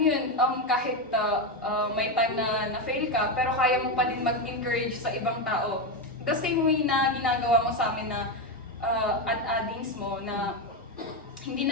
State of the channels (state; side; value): normal; both; correlation 0.10